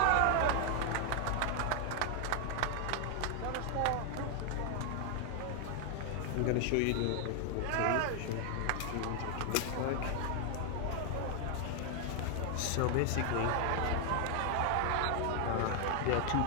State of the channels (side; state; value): both; different; correlation 0.00